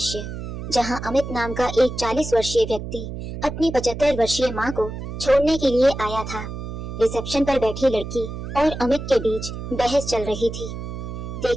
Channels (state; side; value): noise; right; hum, 7 dB below the sound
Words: जहां अमित नाम का एक 40 वर्षीय व्यक्ति अपनी 75 वर्षीय मां को छोड़ने के लिए आया था। रिसेप्शन पर बैठी लड़की और अमित के बीच बहस चल रही थी।